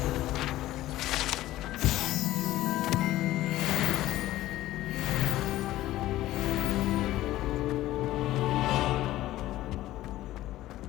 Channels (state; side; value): quieter; right; 15.4 dB